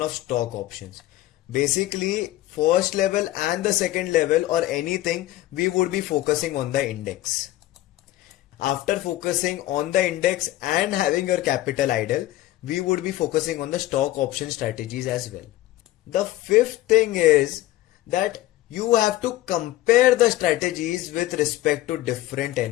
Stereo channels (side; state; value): right; quieter; 15.9 dB